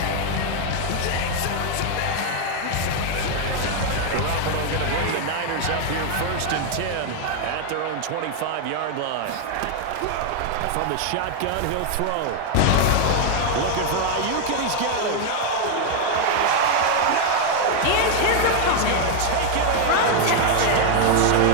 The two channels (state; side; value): different; both; correlation 0.01